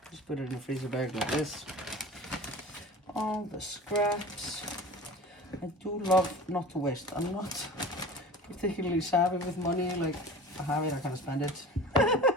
in the freezer bag like this. All the scraps. I do love not to waste. I'm not particularly savvy with money, like I have it, I can't spend it.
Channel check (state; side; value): normal; both; correlation 0.37